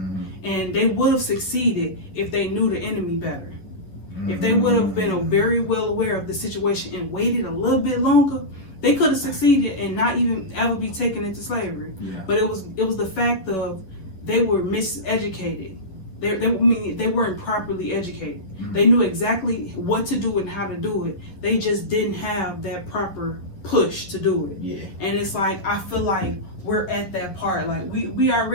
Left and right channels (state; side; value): late; right; 11 ms